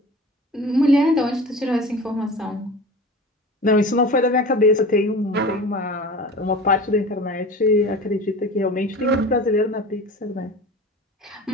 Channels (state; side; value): normal; both; correlation 0.37